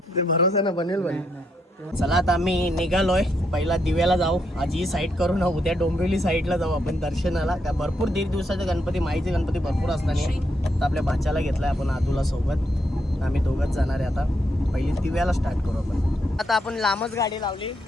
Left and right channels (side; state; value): both; normal; correlation 0.78